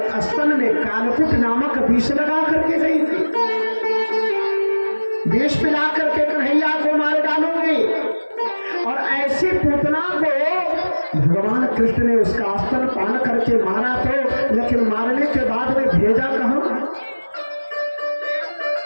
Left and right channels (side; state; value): both; inverted; correlation -1.00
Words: स्तन में कालकुट नामक विष लगा करके गई थी, विष पिला करके कन्हैया को मार डालूंगी, और ऐसी पूतना को भगवान कृष्ण ने उसका स्तन पान करके मारा तो, लेकिन मारने के बाद में भेजा कहां?